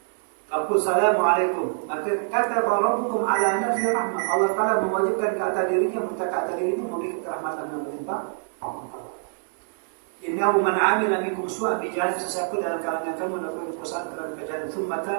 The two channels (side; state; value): left; silent; digital silence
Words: Faqul salamualaikum. Maka kata rabbukum ala nafsi rahmah. Allah Ta'ala mewajibkan ke atas dirinya, minta ke atas dirinya memberi kerahmatan yang berlimpah. Innahu man 'amila minkum su'an bi jahalin, sesiapa dalam kalangan kamu melakukan kesalahan kerana kejahatan, thumma